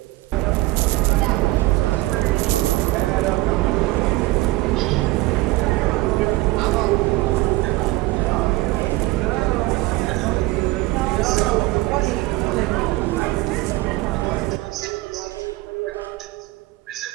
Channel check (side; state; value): left; quieter; 20.0 dB